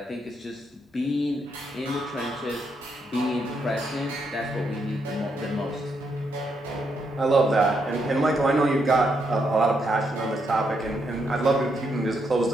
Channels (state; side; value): normal; both; correlation 0.78